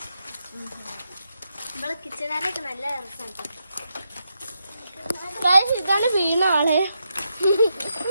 നമ്മളെ കിച്ചണാനൊക്കെ നല്ല രസമുണ്ട്. ഇതാണ് വീണാണ്.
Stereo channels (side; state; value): both; inverted; correlation -0.83